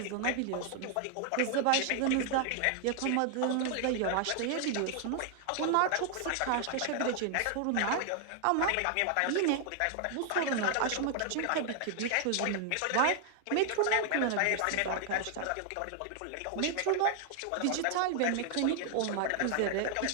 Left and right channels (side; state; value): both; different; correlation 0.00